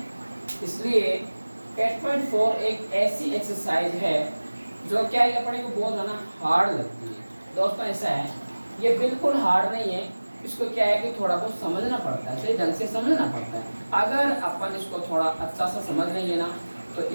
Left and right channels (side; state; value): both; inverted; correlation -1.00